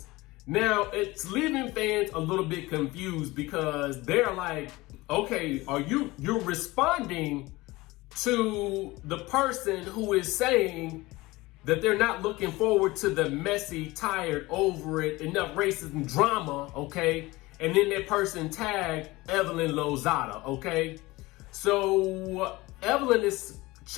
Now, it's leaving fans a little bit confused because they're like, okay, you're responding to the person who is saying that they're not looking forward to the messy, tired, over it, enough racism drama, okay? And then that person tagged Evelyn Lozada, okay? So Evelyn is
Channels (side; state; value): right; quieter; 20.6 dB